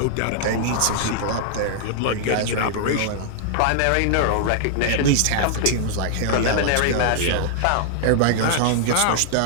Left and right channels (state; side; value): different; both; correlation -0.01